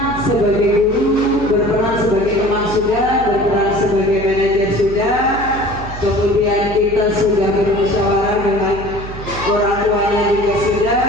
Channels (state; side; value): noise; right; hum, 11 dB below the sound